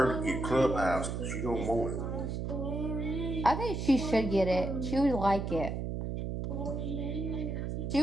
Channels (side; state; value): right; noise; hum, 3 dB below the sound